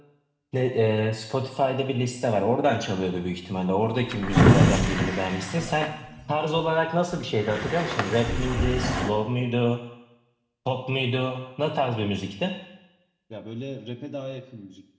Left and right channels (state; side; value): identical; both; correlation 1.00